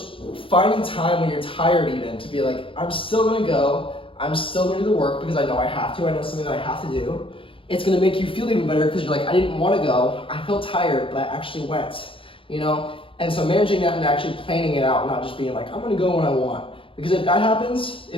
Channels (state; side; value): late; right; 0.25 ms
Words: finding time when you're tired even to be like, I'm still gonna go, I'm still gonna do the work because I know I have to, I know it's something that I have to do. It's gonna make you feel even better because you're like, I didn't wanna go, I felt tired, but I actually went, And so managing that and actually planning it out, not just being like, I'm gonna go when I want. Because if that happens,